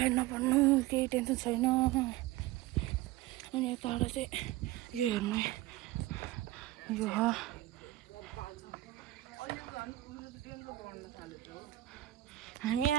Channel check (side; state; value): left; quieter; 16.2 dB